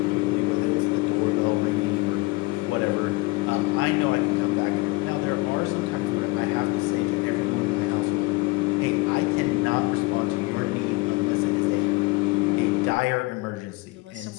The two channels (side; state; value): right; quieter; 23.6 dB